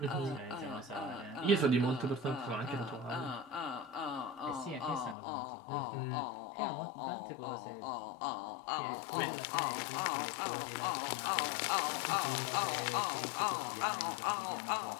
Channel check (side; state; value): right; drops out; at 5.2 s